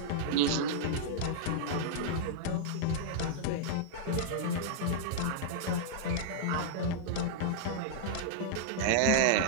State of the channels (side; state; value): both; different; correlation -0.02